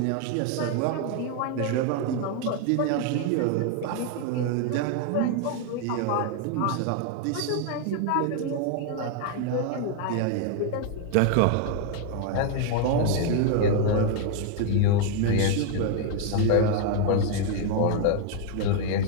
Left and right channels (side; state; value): both; different; correlation 0.00